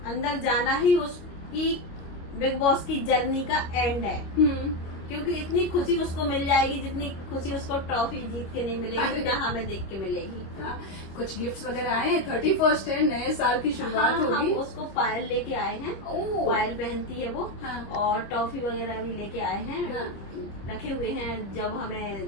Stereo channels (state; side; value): late; right; 25 ms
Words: अंदर जाना ही उसकी बिग बॉस की जर्नी का एंड है। क्योंकि इतनी खुशी उसको मिल जाएगी जितनी खुशी उसको ट्रॉफी जीत के नहीं मिलेगी, जितना हमें देख के मिलेगी। कुछ गिफ्ट्स वगैरह आए हैं? 31st है, नए साल की शुरुआत होगी। उसको पायल लेके आए हैं, पायल पहनती है वो। और टॉफी वगैरह भी लेके आए हैं, रखे हुए हैं। जब